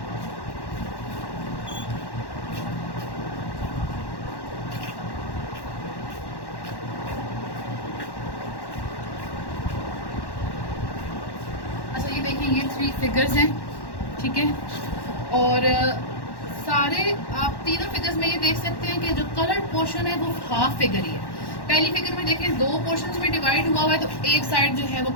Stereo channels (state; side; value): late; right; 1.1 ms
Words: देखिए ये 3 फिगर्स हैं, ठीक है। और सारे आप तीनों फिगर्स में ये देख सकते हैं कि जो कलर्ड पोर्शन है वो हाफ फिगर ही है। पहली फिगर में देखें 2 पोर्शंस में डिवाइड हुआ हुआ है तो एक साइड जो है वो